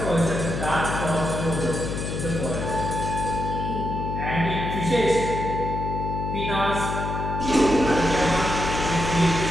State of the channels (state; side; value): noise; left; hum, 4 dB below the sound